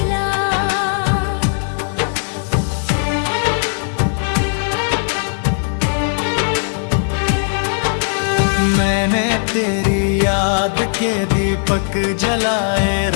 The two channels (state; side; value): silent; right; 67 dB below the other